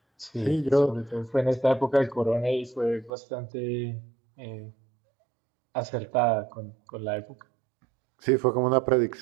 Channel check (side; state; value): left; drops out; at 3.1 s